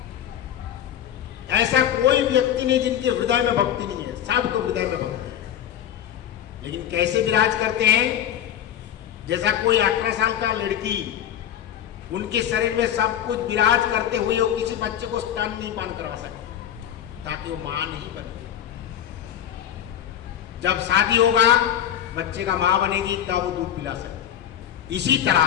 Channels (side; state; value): right; quieter; 10.5 dB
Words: ऐसा कोई व्यक्ति नहीं जिनके हृदय में भक्ति नहीं है, सबके हृदय में भक्ति है। लेकिन कैसे विराज करते हैं? जैसा कोई 18 साल का लड़की, उनके शरीर में सब कुछ विराज करते हुए वो किसी बच्चे को स्तन नहीं पान करवा सकते, ताकि वो मां नहीं बने। जब शादी होगा, बच्चे का मां बनेगी, तब वो दूध पिला सकती। इसी